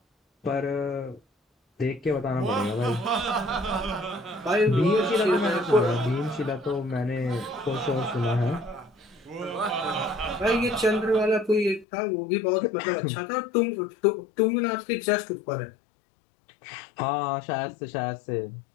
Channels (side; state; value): right; drops out; at 11.9 s